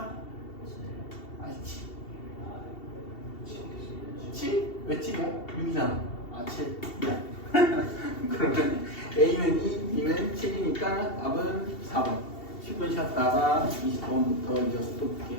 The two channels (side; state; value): right; late; 2.7 ms